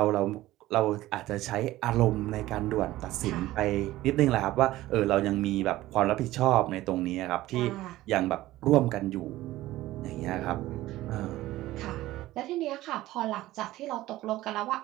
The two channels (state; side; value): quieter; left; 16.3 dB